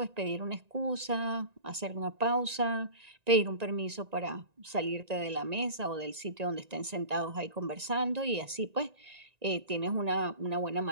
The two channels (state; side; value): late; left; 1.9 ms